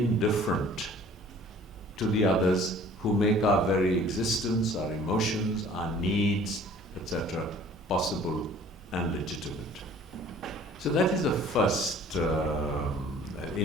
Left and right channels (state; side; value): normal; both; correlation 0.51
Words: to the others who make our very existence, our emotions, our needs, etc., possible and legitimate? So that is the first